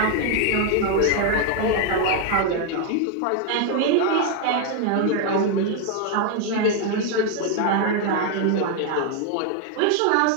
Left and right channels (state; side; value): different; both; correlation 0.01